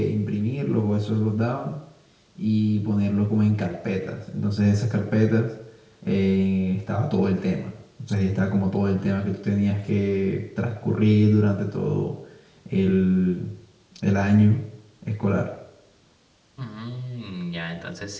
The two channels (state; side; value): identical; both; correlation 1.00